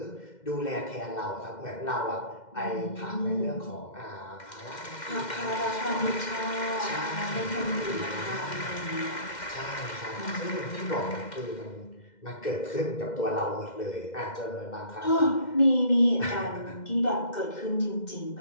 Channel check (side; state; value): right; late; 2.1 ms